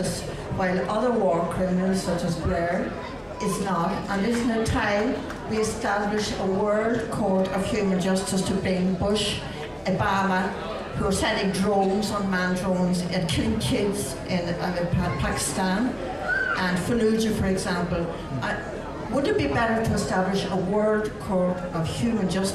while other war criminals, such as Blair, is not? And isn't it time we establish a World Court of Human Justice to bring Bush, Obama, who are sending drones, unmanned drones, and killing kids in Pakistan, and Fallujah, for example? Would it be better to establish a World Court of Human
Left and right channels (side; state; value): both; identical; correlation 1.00